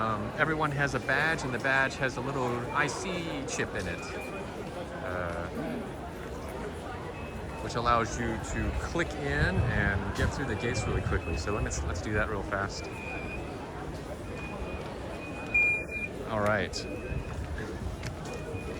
Everyone has a badge, and the badge has a little IC chip in it, which allows you to click in and get through the gates really quickly. So let's do that real fast. All right.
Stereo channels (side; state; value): both; identical; correlation 1.00